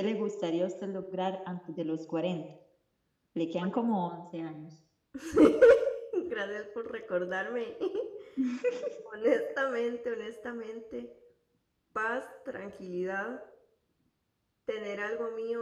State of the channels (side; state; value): both; identical; correlation 1.00